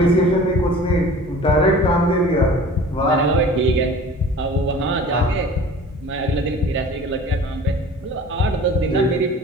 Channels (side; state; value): both; normal; correlation 0.44